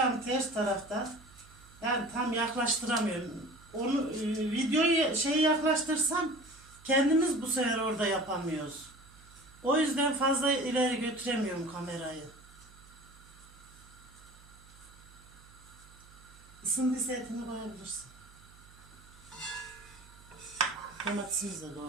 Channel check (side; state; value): right; noise; hum, 23 dB below the sound